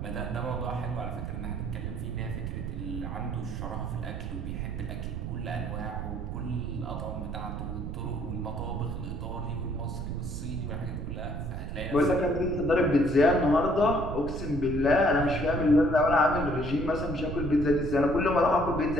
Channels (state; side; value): noise; right; rumble, 5 dB below the sound